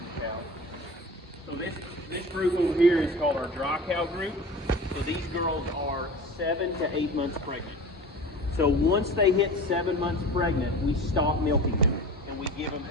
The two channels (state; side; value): normal; both; correlation 0.36